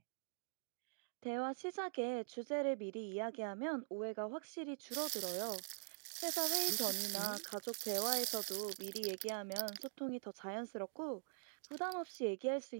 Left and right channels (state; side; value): silent; left; digital silence